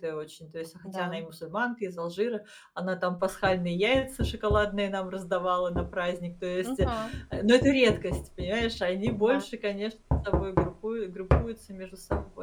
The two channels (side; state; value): both; identical; correlation 1.00